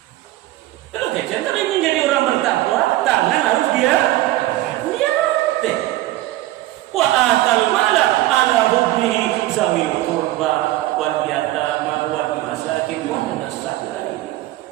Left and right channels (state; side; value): quieter; left; 16.2 dB